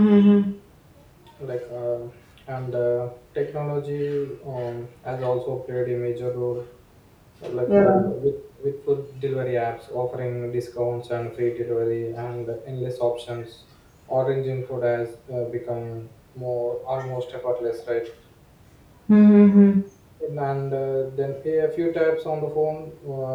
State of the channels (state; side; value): identical; both; correlation 1.00